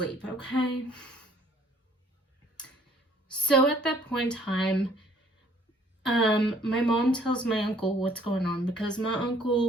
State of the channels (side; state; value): both; normal; correlation 0.60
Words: okay? So at that point in time, my mom tells my uncle what's going on because my